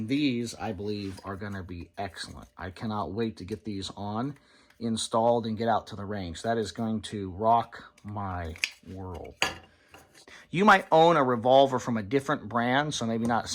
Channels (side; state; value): both; identical; correlation 1.00